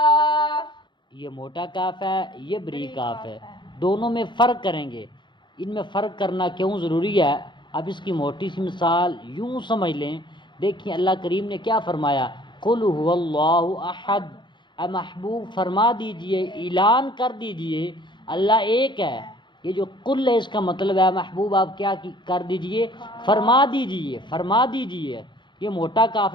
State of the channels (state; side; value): late; right; 0.23 ms